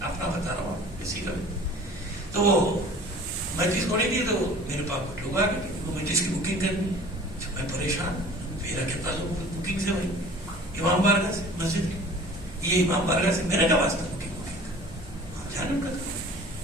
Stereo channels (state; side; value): normal; both; correlation 0.45